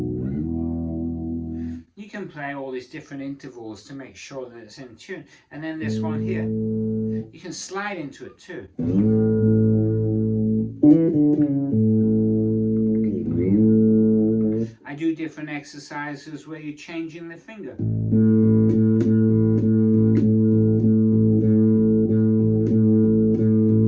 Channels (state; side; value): identical; both; correlation 1.00